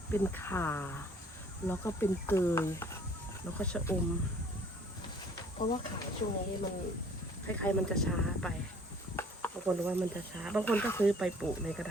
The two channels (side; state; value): both; normal; correlation 0.55